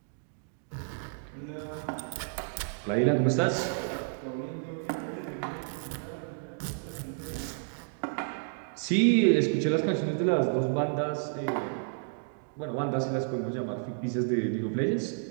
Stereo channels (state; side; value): silent; left; digital silence